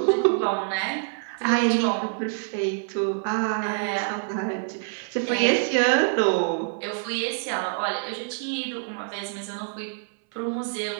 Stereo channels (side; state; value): left; silent; 61 dB below the other